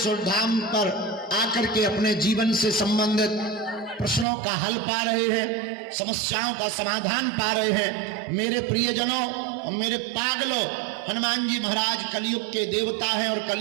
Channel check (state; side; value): drops out; left; at 4.2 s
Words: धाम पर आकर के अपने जीवन से संबंधित प्रश्नों का हल पा रहे हैं, समस्याओं का समाधान पा रहे हैं। मेरे प्रियजनों और मेरे पागलों, हनुमान जी महाराज कलयुग के देवता हैं और